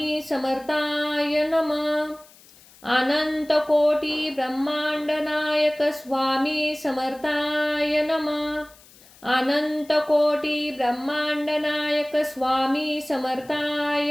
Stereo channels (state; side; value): noise; left; hiss, 25 dB below the sound